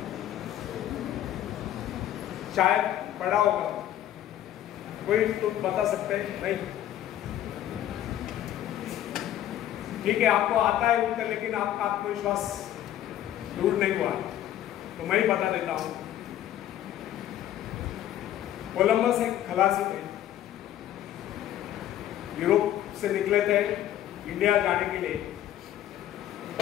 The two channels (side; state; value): right; quieter; 12.1 dB